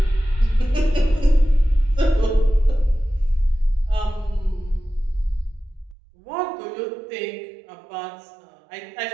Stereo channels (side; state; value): left; drops out; at 6.0 s